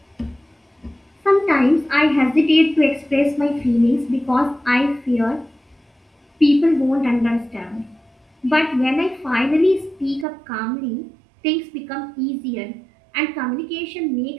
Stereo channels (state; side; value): drops out; left; at 10.2 s